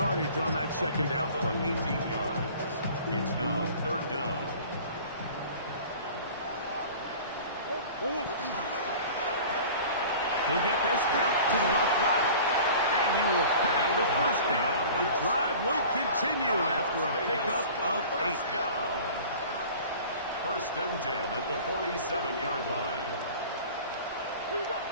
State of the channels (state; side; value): inverted; both; correlation -0.43